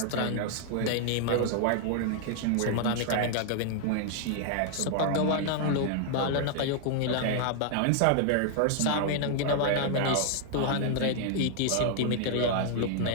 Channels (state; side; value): different; both; correlation 0.00